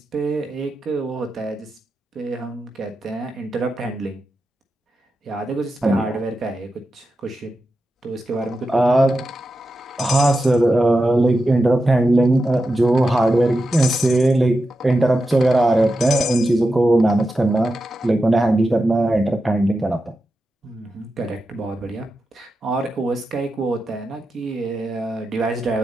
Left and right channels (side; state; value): both; normal; correlation 0.90